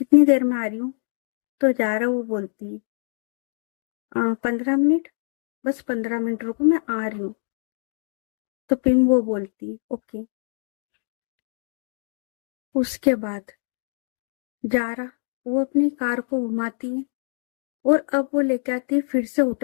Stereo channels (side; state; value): right; silent; digital silence